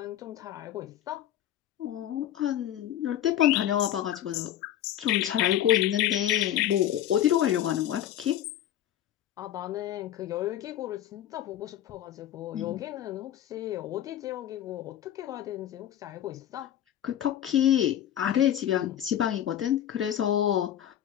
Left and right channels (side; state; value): right; quieter; 11.5 dB